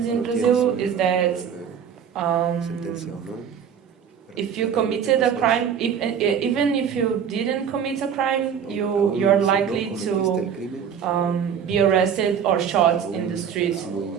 in Brazil is that if you committed a crime, even if you didn't commit a crime, you're likely to be arrested or shot in the streets,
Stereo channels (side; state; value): left; quieter; 7.8 dB